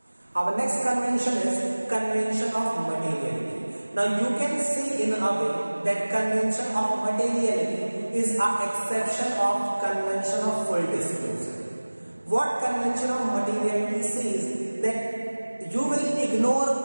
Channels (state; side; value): inverted; both; correlation -1.00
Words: Our next convention is convention of materiality. Now you can see in a way that convention of materiality is an exception of convention of full disclosure. What convention of materiality says? That you will ignore